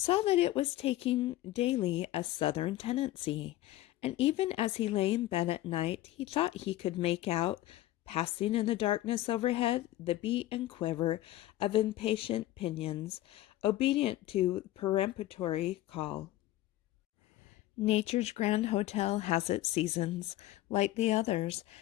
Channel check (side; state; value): right; quieter; 15.4 dB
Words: that it was taking daily a southern tendency, and even as he lay in bed at night, he thought he could make out, passing in the darkness overhead, the beat and quiver of impatient pinions, obedient to peremptory call. Nature's grand hotel has its seasons, like the others,